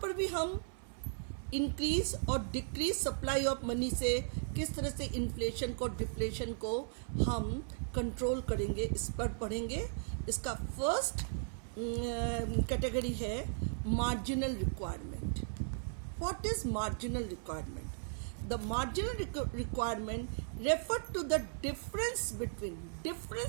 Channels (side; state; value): left; silent; 53 dB below the other